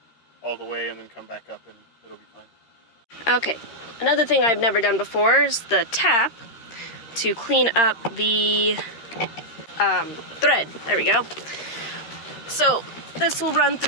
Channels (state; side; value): late; right; 13 ms